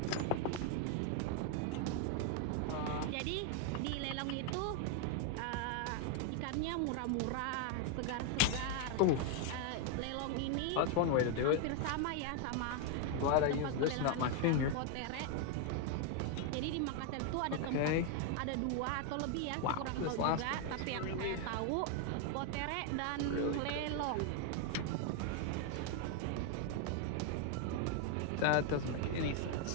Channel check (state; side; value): different; both; correlation 0.00